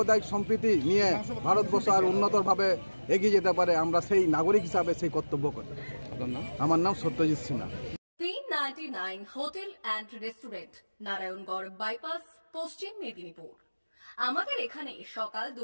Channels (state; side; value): inverted; both; correlation -1.00